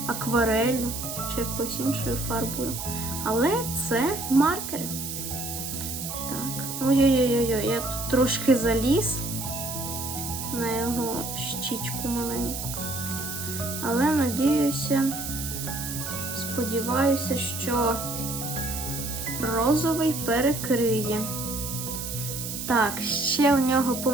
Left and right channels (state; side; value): noise; right; hiss, 6 dB below the sound